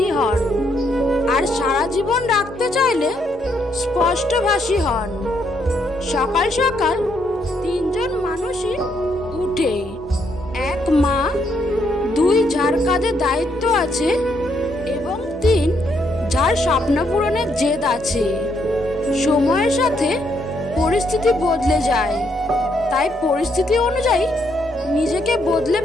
হন, আর সারা জীবন রাখতে চাইলে স্পষ্টভাষী হন। সকাল সকাল তিনজন মানুষই উঠে, এক মা, দুই যার কাঁধে দায়িত্ব আছে এবং তিন যার স্বপ্ন পূরণের জেদ আছে। সময়ের সাথে পরিস্থিতি বদলে যায়, তাই পরিস্থিতি অনুযায়ী নিজেকে বদলে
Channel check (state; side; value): normal; both; correlation 0.74